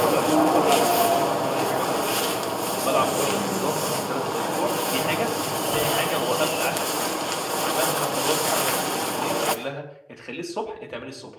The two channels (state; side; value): identical; both; correlation 1.00